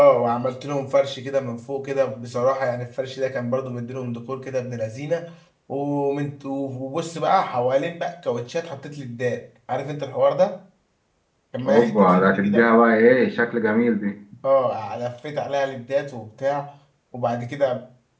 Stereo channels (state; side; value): identical; both; correlation 1.00